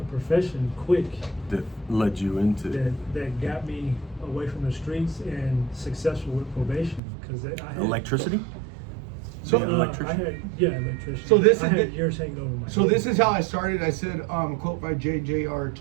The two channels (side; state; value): left; drops out; at 7.0 s